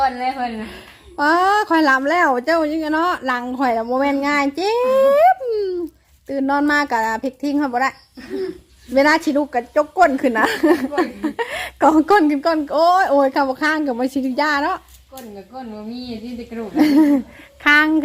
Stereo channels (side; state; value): both; identical; correlation 1.00